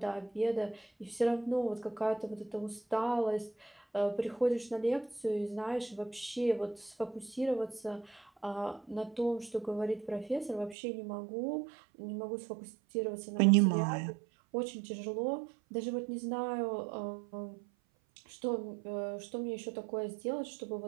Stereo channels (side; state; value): left; drops out; at 10.8 s